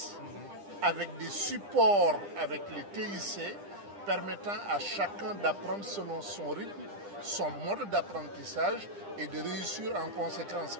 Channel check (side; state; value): left; late; 9.9 ms